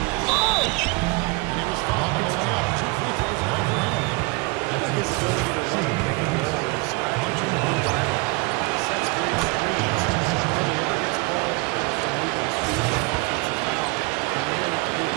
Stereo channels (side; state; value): left; quieter; 26.2 dB